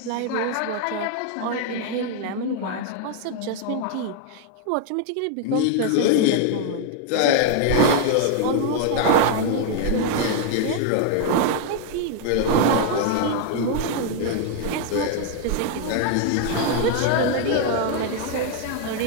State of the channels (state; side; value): different; both; correlation 0.00